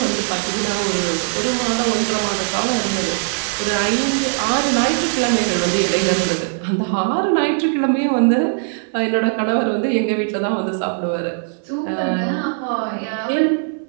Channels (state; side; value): silent; left; 66 dB below the other